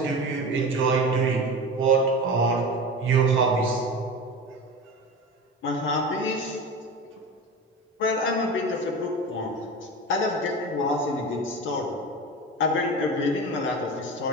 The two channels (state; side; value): normal; both; correlation 0.29